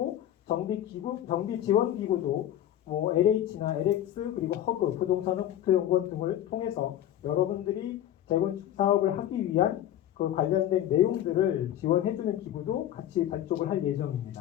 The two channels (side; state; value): right; quieter; 11.8 dB